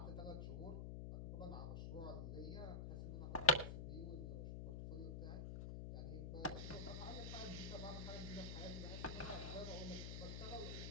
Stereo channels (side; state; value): left; noise; hum, 4 dB below the sound